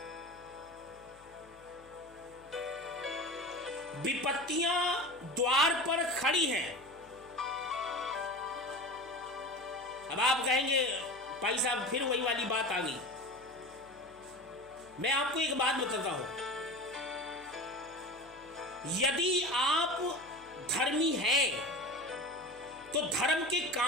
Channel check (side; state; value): left; noise; hum, 26 dB below the sound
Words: विपत्तियां द्वार पर खड़ी हैं। अब आप कहेंगे भाई साहब फिर वही वाली बात आ गई। मैं आपको एक बात बताता हूं, यदि आप धर्मी हैं तो धर्म के